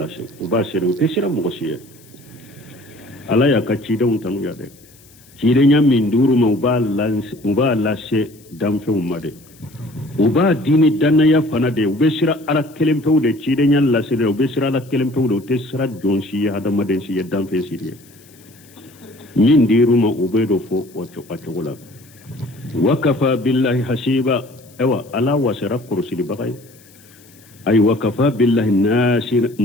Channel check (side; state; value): left; noise; hiss, 26 dB below the sound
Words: سيد وباشر وتسير مغشية على يا كتشيدن تنو يادي كيدن من دور مبالاسي دمفو مدي uba dini danaya fana de ubesira ala kelempew de cide nyan la sire ubesira ala kelempew de tesira jonsi hada maden si yedam fe sire min diruma ubedo fo wacho patola wakafa billahi hasiba ewa ala wasira kursili bagay ay wakafa billahi